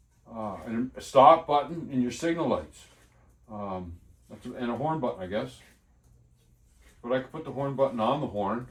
stop button and your signal lights, and a horn button, I guess. But I could put the horn button on the horn,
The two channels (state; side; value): identical; both; correlation 1.00